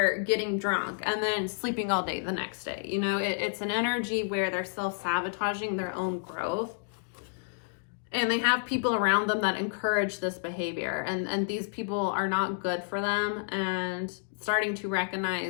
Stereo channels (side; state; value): right; silent; digital silence